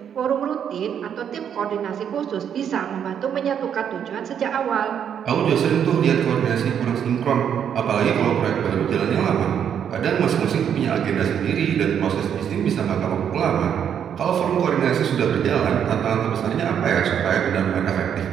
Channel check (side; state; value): left; quieter; 8.6 dB